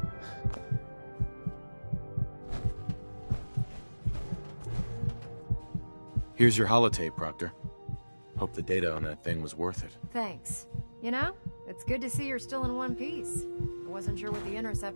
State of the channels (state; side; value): inverted; both; correlation -1.00